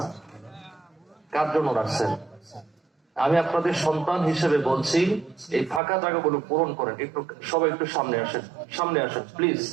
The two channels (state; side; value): drops out; left; at 5.8 s